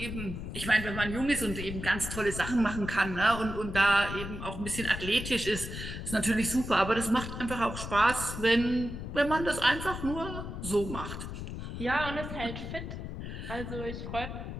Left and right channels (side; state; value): left; noise; rumble, 7 dB below the sound